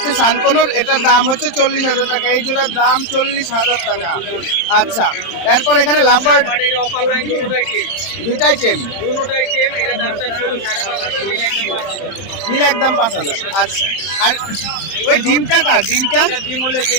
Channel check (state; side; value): late; right; 31 ms